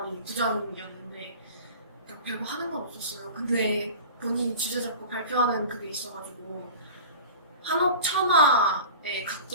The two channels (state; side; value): inverted; both; correlation -0.38